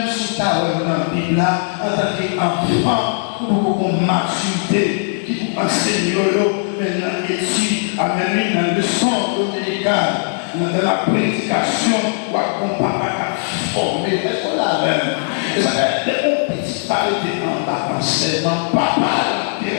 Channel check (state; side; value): silent; right; digital silence